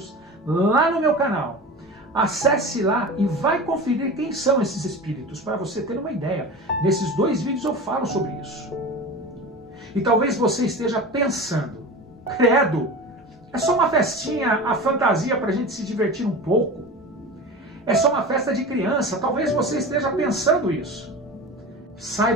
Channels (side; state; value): both; normal; correlation 0.31